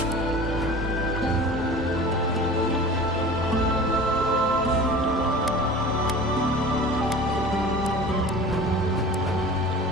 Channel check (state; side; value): normal; both; correlation 0.39